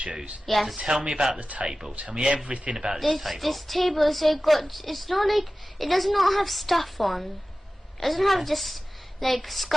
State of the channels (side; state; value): both; normal; correlation 0.96